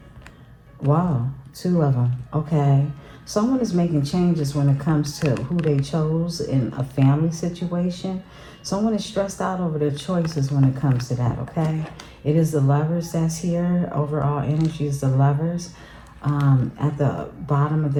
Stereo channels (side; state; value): both; identical; correlation 1.00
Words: Wow, two of them. Okay. Someone is making changes when it comes to who they chose in a family situation. Someone is stressed out over their choices when it comes to that, okay? It is the Lovers that's here. Overall energy is the Lovers at the bottom of